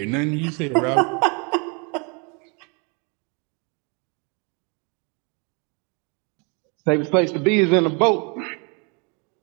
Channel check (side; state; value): left; quieter; 33.9 dB